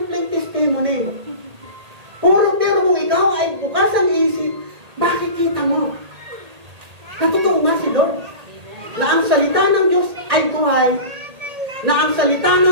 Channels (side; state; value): left; late; 1.8 ms